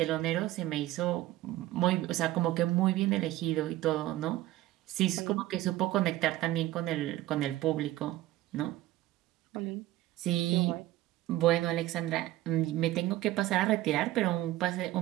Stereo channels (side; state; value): left; quieter; 15.6 dB